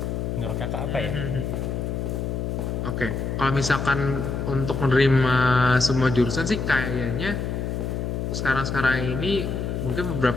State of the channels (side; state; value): left; noise; hum, 2 dB below the sound